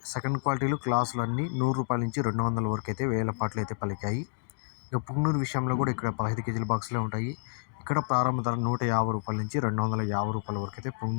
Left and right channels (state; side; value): silent; right; digital silence